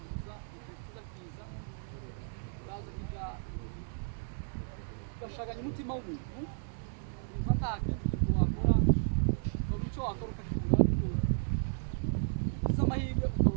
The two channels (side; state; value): left; silent; 55 dB below the other